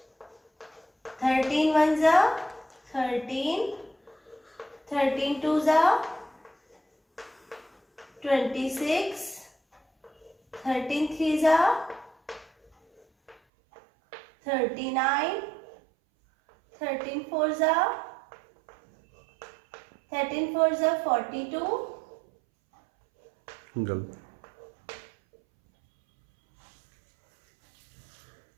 13 ones are 13. 13 twos are 26. 13 threes are 39, 13 fours are 42, गलत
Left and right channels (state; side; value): drops out; left; at 13.4 s